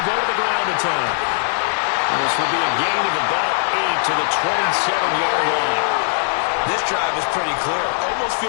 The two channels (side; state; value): right; silent; 61 dB below the other